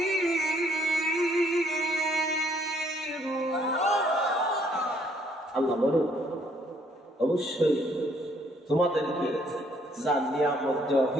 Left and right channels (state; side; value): normal; both; correlation 0.66